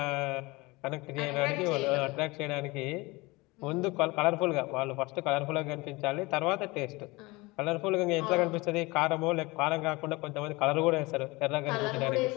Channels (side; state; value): right; quieter; 23.4 dB